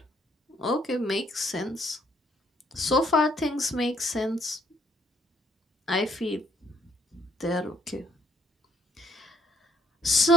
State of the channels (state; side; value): normal; both; correlation 0.68